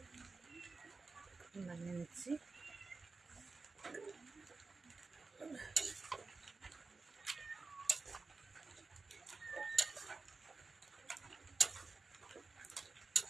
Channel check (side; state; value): left; quieter; 4.0 dB